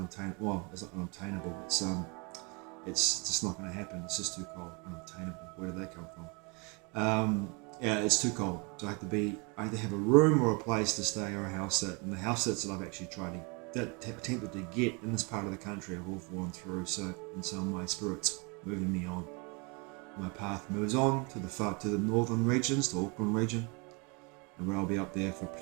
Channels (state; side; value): quieter; left; 31.3 dB